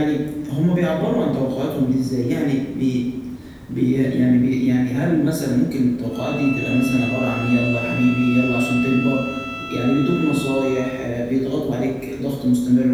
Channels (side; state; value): both; identical; correlation 1.00